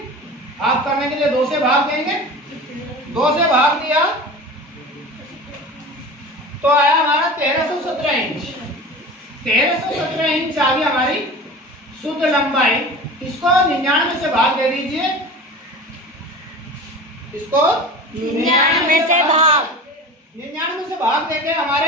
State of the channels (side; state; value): both; normal; correlation 0.34